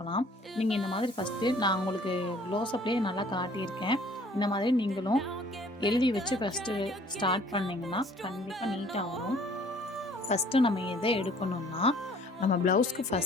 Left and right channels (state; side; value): normal; both; correlation 0.55